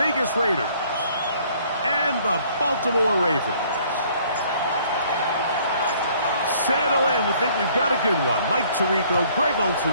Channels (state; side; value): inverted; both; correlation -0.59